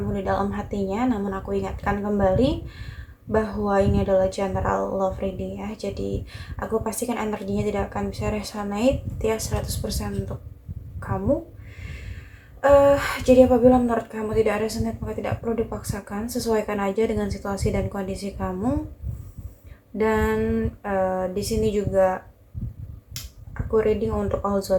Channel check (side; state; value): both; identical; correlation 1.00